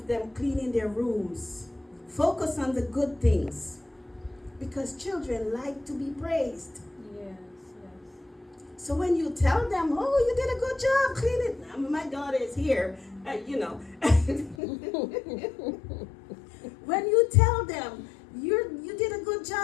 them cleaning their rooms. Focus on the good things, because children like to be praised. Yes. So when you tell them, oh, you did a good job cleaning, my daughter is here, when you tell them you did a good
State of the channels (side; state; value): right; drops out; at 14.6 s